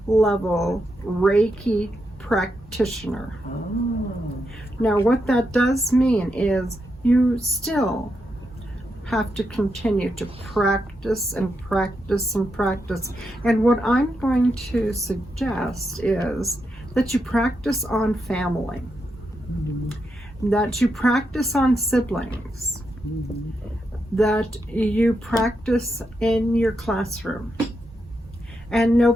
level Reiki practitioner. Oh. Now what that does mean is you still have to continue to practice and practice and practice. And what I'm going to suggest is that you practice on family, that you practice on siblings, that you practice in your classroom. And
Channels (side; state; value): both; normal; correlation 0.84